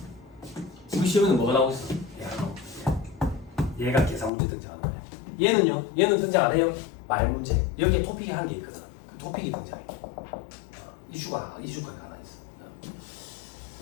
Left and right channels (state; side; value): drops out; right; at 4.3 s